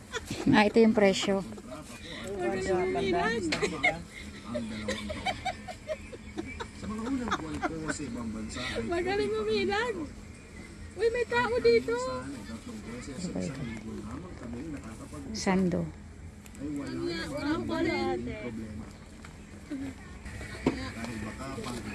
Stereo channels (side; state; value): both; identical; correlation 1.00